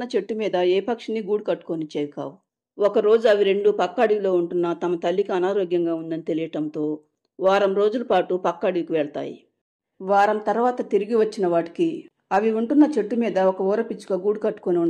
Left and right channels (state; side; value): identical; both; correlation 1.00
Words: చెట్టు మీద ఏ పక్షిని గూడు కట్టుకొనిచ్చేవి కావు. ఒకరోజు అవి రెండూ పక్క అడవిలో ఉంటున్న తమ తల్లికి అనారోగ్యంగా ఉందని తెలియటంతో వారం రోజుల పాటు పక్క అడవికి వెళ్తాయి. వారం తర్వాత తిరిగి వచ్చిన వాటికి అవి ఉంటున్న చెట్టు మీద ఒక ఊర పిచ్చుక గూడు కట్టుకొని